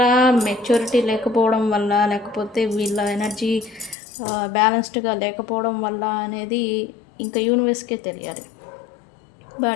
మెచ్యూరిటీ లేకపోవడం వల్ల, లేకపోతే వీళ్ళ ఎనర్జీ బ్యాలెన్స్డ్గా లేకపోవడం వల్ల అనేది ఇంకా యూనివర్స్కే తెలియాలి.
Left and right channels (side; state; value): right; drops out; at 4.0 s